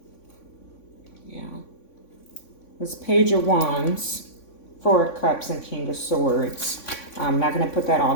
Yeah. It's Page of Wands, 4 of Cups, and King of Swords. I'm not going to put that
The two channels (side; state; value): right; late; 3.5 ms